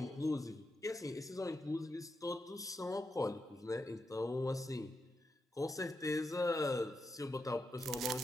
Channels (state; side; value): normal; both; correlation 0.86